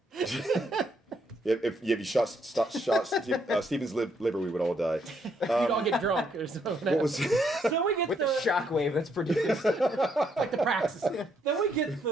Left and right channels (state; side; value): normal; both; correlation 0.73